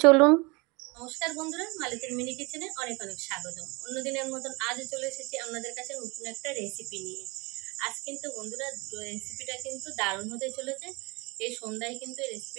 চলুন। নমস্কার বন্ধুরা, মালতীর মিনি কিচেনে অনেক অনেক স্বাগতম। অন্যদিনের মতন আজও চলে এসেছি আপনাদের কাছে নতুন একটা রেসিপি নিয়ে। আজ কিন্তু বন্ধুরা রেসিপিটা কিন্তু দারুণ হতে চলেছে। এই সন্ধ্যায় কিন্তু এই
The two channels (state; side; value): quieter; left; 26.9 dB